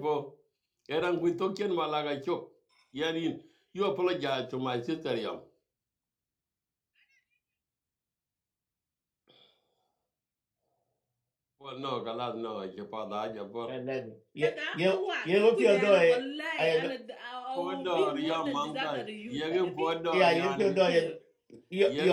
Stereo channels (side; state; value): both; identical; correlation 1.00